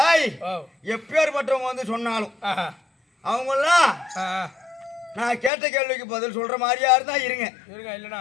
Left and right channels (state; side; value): drops out; right; at 5.5 s